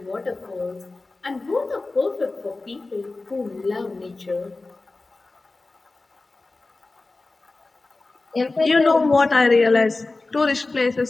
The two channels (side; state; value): right; quieter; 3.4 dB